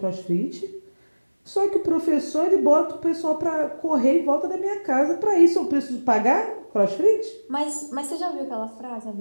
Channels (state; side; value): inverted; both; correlation -1.00